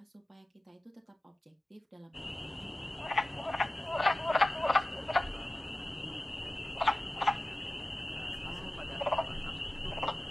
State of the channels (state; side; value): normal; both; correlation 0.96